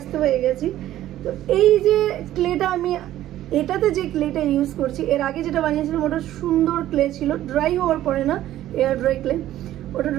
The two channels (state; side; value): quieter; left; 13.4 dB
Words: হয়ে গেছি। তো এই যে ক্লেটা আমি, এটাতে যে ক্লেটা ইউজ করছি, এর আগে যেটা বানিয়েছিলাম ওটা সুন্দর ক্লে ছিল, ড্রাই হওয়ার পরে না, এয়ার ড্রাই ক্লে, ওটা